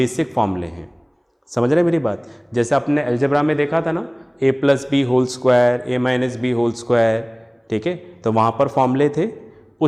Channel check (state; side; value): identical; both; correlation 1.00